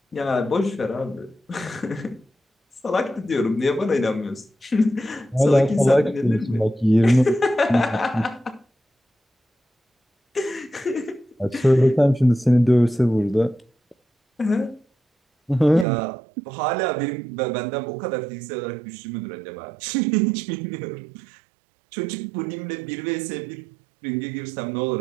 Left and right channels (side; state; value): left; drops out; at 15.9 s